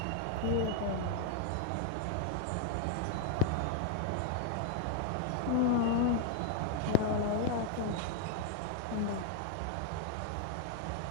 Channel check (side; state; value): both; different; correlation 0.00